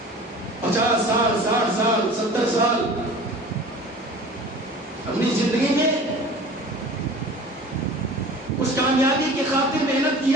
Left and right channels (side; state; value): both; normal; correlation 0.42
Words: 50 سال 60 سال 70 سال، اپنی زندگی میں اس کامیابی کی خاطر محنت